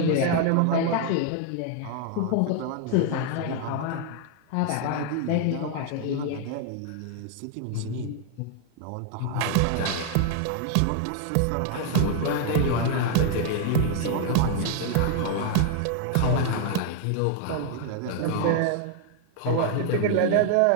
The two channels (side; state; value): both; different; correlation 0.00